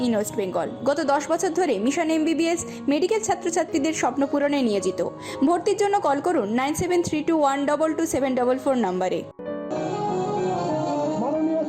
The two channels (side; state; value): both; identical; correlation 1.00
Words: in West Bengal. গত 10 বছর ধরে মিশন এমবিবিএস মেডিকেল ছাত্রছাত্রীদের স্বপ্ন পূরণে নিয়োজিত। ভর্তির জন্য কল করুন 9732122744 নম্বরে। মাননীয়